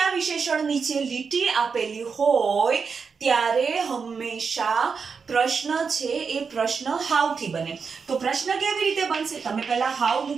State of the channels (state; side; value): quieter; left; 5.5 dB